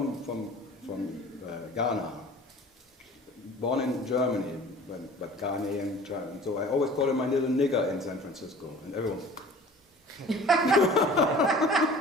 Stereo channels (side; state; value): both; normal; correlation 0.45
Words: Ghana, born in Germany, but Ghanaian child. So I always call her my little nigger in San Francisco, and everyone.